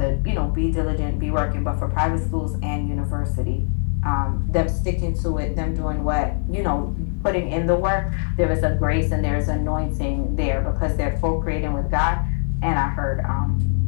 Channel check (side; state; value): right; silent; digital silence